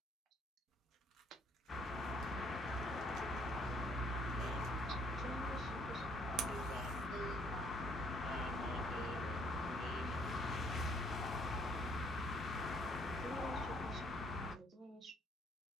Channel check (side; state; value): both; normal; correlation 0.65